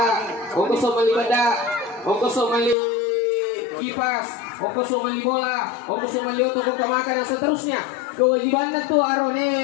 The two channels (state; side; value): drops out; right; at 2.8 s